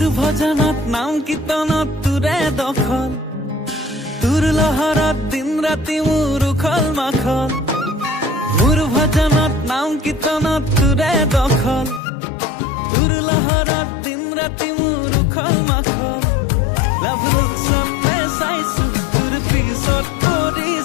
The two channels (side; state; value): right; drops out; at 12.0 s